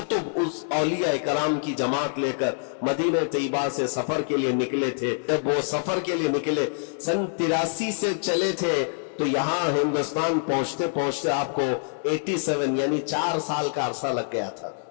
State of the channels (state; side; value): silent; right; digital silence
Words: اس اولیاء کرام کی جماعت لے کر مدینہ طیبہ سے سفر کے لیے نکلے تھے۔ جب وہ سفر کے لیے نکلے، سن 83 سے چلے تھے، تو یہاں ہندوستان پہنچتے پہنچتے آپ کو 87 یعنی 4 سال کا عرصہ لگ گیا تھا۔